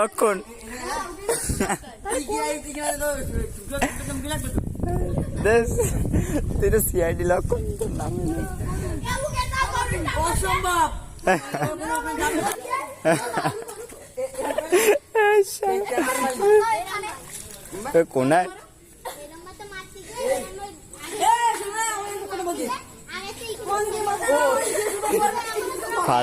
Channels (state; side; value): identical; both; correlation 1.00